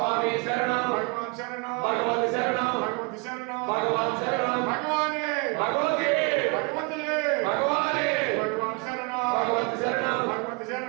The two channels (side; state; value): left; quieter; 31.1 dB